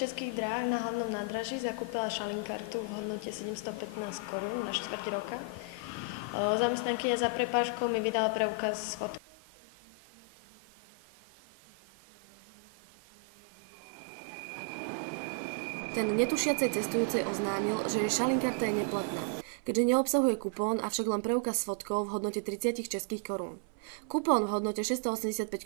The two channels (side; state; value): left; drops out; at 9.2 s